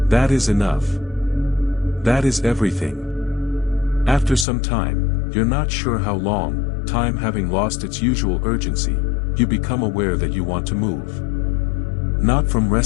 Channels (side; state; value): right; drops out; at 4.5 s